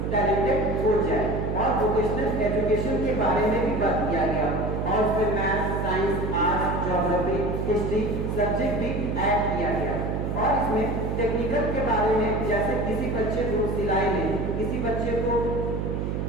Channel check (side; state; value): right; noise; hum, 1 dB below the sound